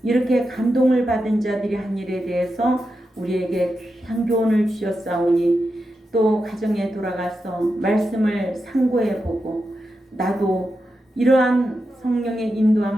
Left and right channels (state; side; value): normal; both; correlation 0.88